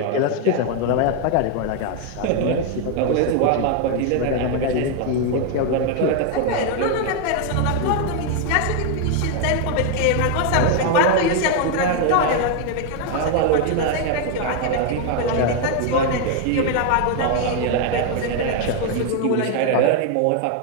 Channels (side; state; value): both; different; correlation 0.01